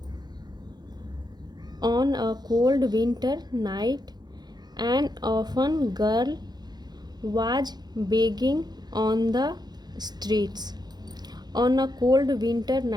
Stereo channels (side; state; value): left; late; 0.20 ms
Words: On a cold winter night an orphan girl was begging on the streets on a cold winter